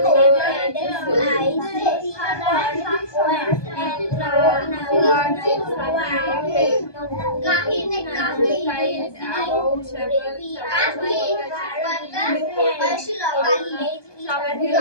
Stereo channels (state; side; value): late; right; 1.2 ms